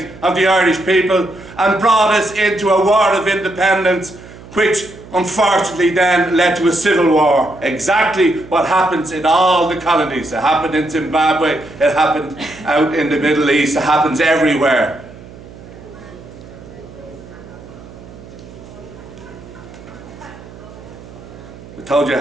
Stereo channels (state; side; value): noise; right; hum, 18 dB below the sound